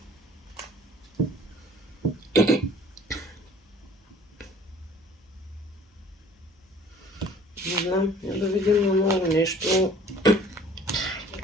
знам, да видим на много нещо.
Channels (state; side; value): normal; both; correlation 0.51